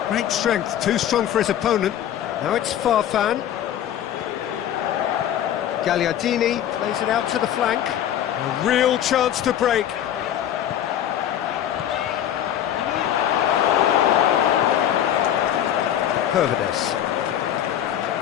Great strength, too strong for his opponent. Now it's Farfan. Gagliardini plays it out to the flank. A real chance to break. Pervedes.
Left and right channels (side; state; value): right; quieter; 10.7 dB